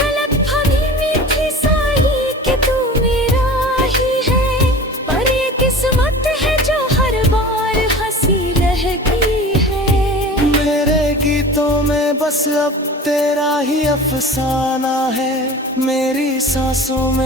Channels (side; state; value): both; normal; correlation 0.38